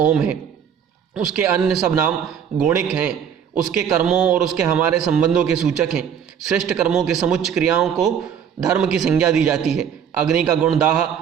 है, उसके अन्य सब नाम गौणिक हैं। उसके कर्मों और उसके हमारे संबंधों के सूचक हैं। श्रेष्ठ कर्मों के समुच्च क्रियाओं को धर्म की संज्ञा दी जाती है। अग्नि का गुण दाह,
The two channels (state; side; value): quieter; left; 8.1 dB